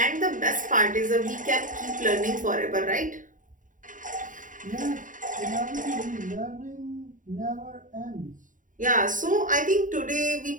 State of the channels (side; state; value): left; late; 0.38 ms